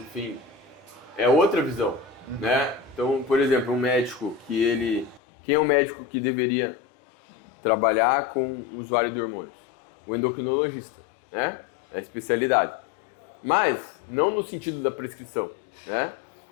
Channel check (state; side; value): drops out; right; at 5.2 s